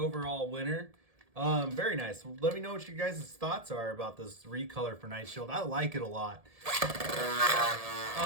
winner. Very nice. Let me know what you guys' thoughts are about this recolor for Knight Shield. I like it a lot.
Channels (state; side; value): late; left; 1.7 ms